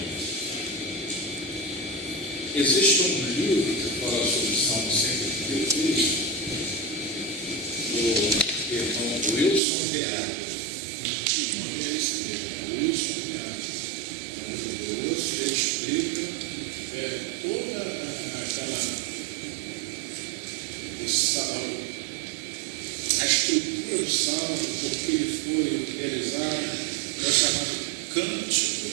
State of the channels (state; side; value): drops out; left; at 9.6 s